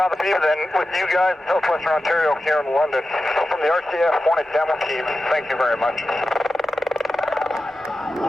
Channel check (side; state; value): both; normal; correlation 0.92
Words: be than with you guys in Southwestern Ontario here in London. So from the RCAF Hornet demo team, thank you very much.